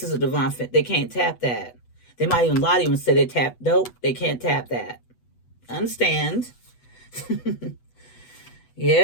is a divine fit. They can't tap that. They might even lie to you and say they tap. Nope, they can't tap that. Understand?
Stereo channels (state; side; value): late; right; 8.1 ms